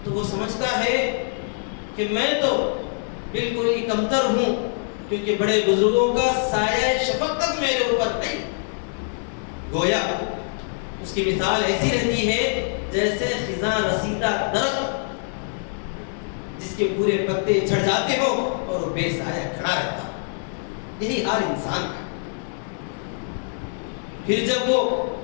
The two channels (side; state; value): right; silent; digital silence